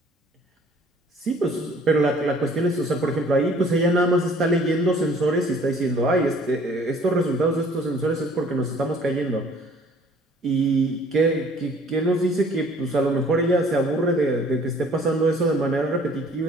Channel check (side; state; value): both; normal; correlation 0.55